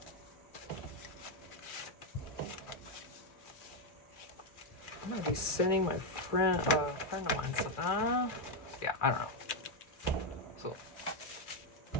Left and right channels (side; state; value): right; late; 2.4 ms